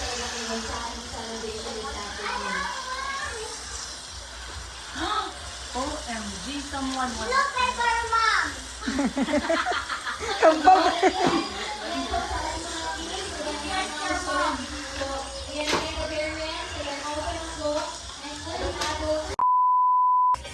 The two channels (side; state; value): both; identical; correlation 1.00